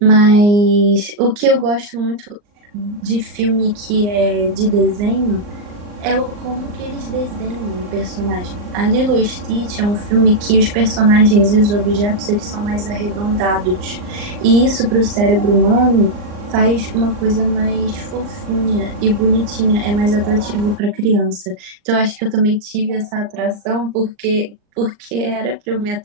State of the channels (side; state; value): left; late; 39 ms